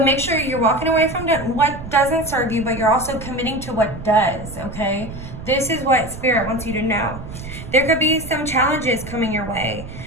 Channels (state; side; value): noise; right; rumble, 11 dB below the sound